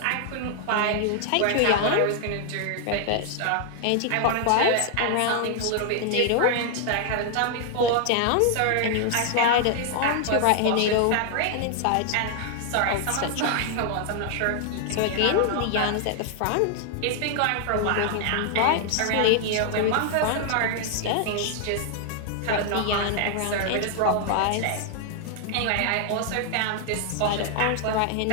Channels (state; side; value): different; both; correlation 0.00